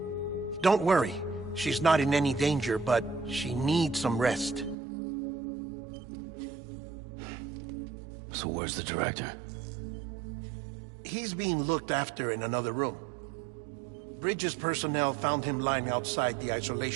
Don't worry, she's not in any danger, but she needs some rest. So where's the director? He's being looked after in another room. Bridges personnel found him lying outside the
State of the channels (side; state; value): left; drops out; at 4.8 s